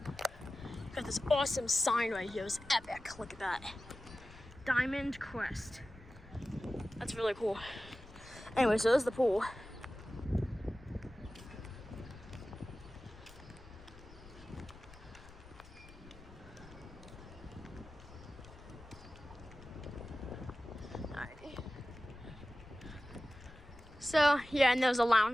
got this awesome sign right here. It's epic. Look at that. Diamond Crest. That's really cool. Anyway, so there's the pool. Alrighty. So yeah, and there's a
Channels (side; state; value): left; noise; rumble, 19 dB below the sound